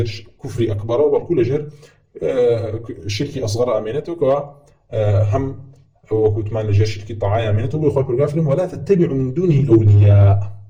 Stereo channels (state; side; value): identical; both; correlation 1.00